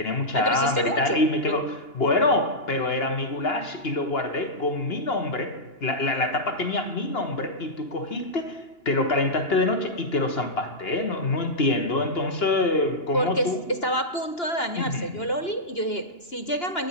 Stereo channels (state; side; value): late; right; 2.9 ms